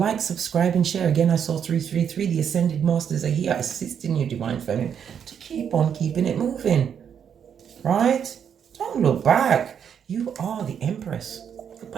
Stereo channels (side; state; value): left; quieter; 8.0 dB